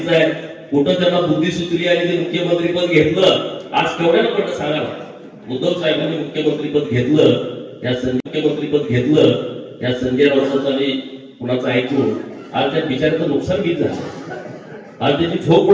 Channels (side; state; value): both; identical; correlation 1.00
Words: आहे. कुठं त्यांना बुद्धी सुचली आणि ते मुख्यमंत्रीपद घेतलं. आज केवढ्याला पडलं सांगा ना. उद्धव साहेबांनी मुख्यमंत्रीपद घेतलं, मुख्यमंत्रीपद घेतलं या संजय राऊतांचं आणि कुणाचं ऐकून आज त्या बिचाऱ्याचं नुकसान किती झालं. आज त्याची झोप